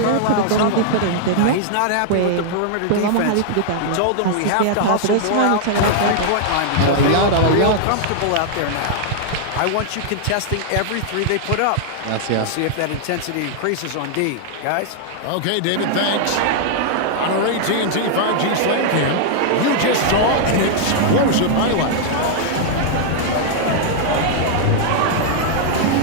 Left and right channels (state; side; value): different; both; correlation -0.01